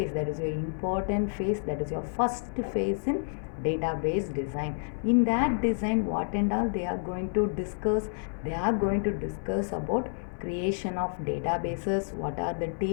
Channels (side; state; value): right; silent; 58 dB below the other